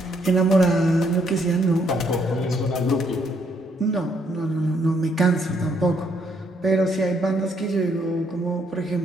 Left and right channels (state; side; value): normal; both; correlation 0.71